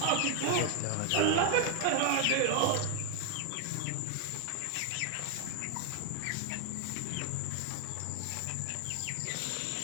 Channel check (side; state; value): both; different; correlation 0.00